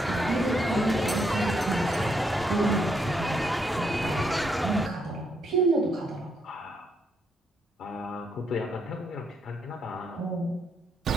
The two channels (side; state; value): both; normal; correlation 0.76